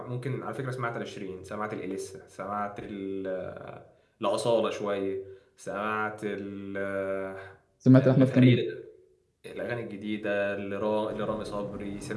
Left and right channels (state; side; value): identical; both; correlation 1.00